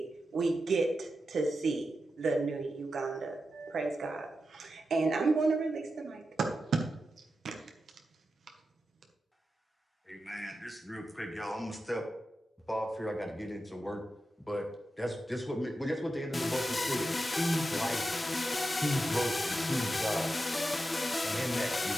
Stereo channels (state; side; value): normal; both; correlation 0.90